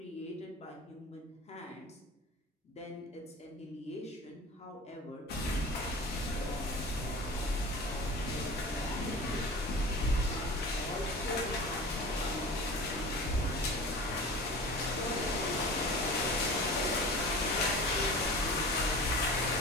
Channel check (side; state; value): both; normal; correlation 0.37